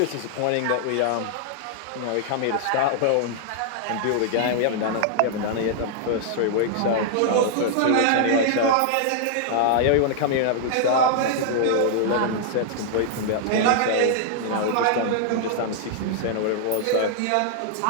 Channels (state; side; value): different; both; correlation -0.01